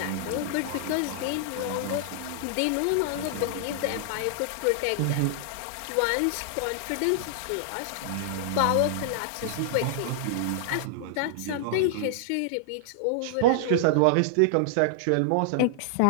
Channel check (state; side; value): different; both; correlation -0.01